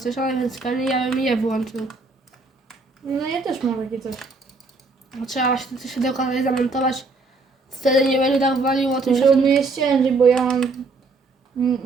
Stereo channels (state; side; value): quieter; left; 3.7 dB